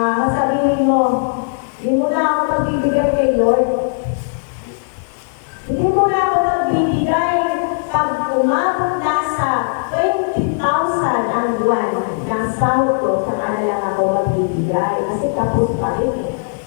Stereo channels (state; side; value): silent; right; 68 dB below the other